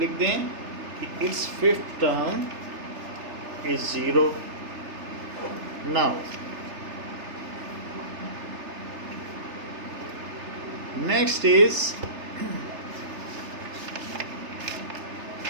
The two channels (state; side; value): late; left; 3.3 ms